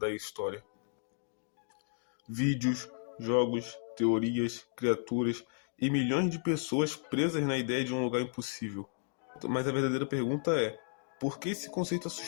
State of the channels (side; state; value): right; silent; digital silence